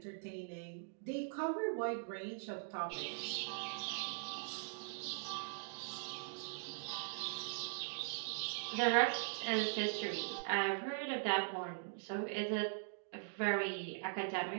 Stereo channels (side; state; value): left; silent; digital silence